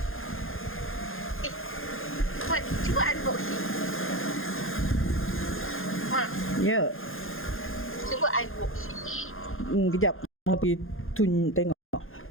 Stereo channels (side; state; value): right; late; 0.60 ms